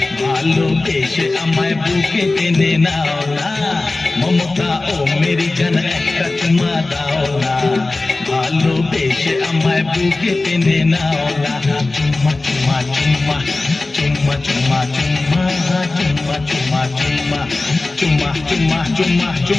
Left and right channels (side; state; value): right; quieter; 3.2 dB